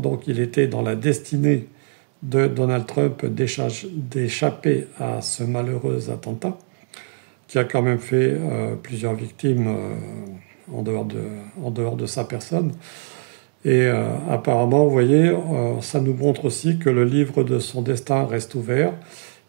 il était dans la destinée de Donald Trump d'échapper à ce malheureux attentat qui a quand même fait plusieurs victimes en dehors de sa personne. Et apparemment, vous voyez, ça nous montre aussi que le livre de son destin reste ouvert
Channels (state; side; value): silent; left; 64 dB below the other